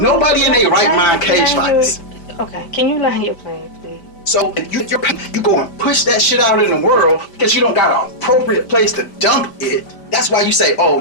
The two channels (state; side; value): late; right; 5.0 ms